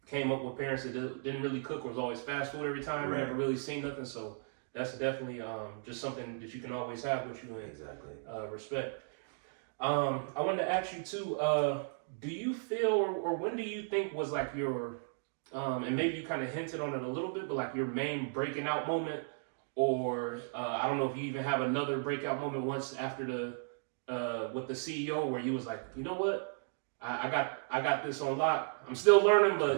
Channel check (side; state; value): left; silent; digital silence